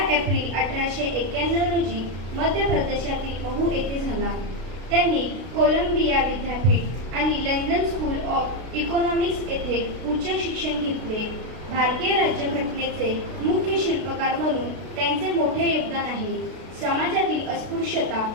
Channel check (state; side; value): late; left; 32 ms